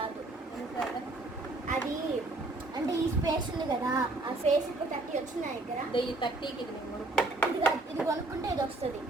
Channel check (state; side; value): quieter; left; 3.0 dB